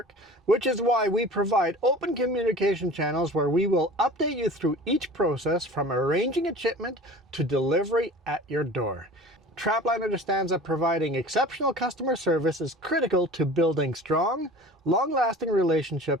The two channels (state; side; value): normal; both; correlation 0.41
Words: which is why we provide open communication channels where we will update you through each process from arranging a shipment to delivery at your door. Trapline understands that providing exceptional customer service is critical to building strong, long-lasting